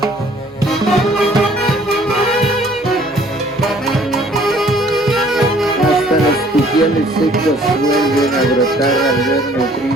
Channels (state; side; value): normal; both; correlation 0.57